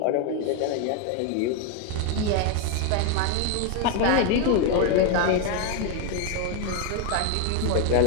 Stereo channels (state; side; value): different; both; correlation 0.01